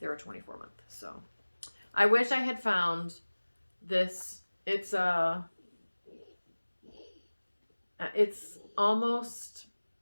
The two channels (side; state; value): both; inverted; correlation -1.00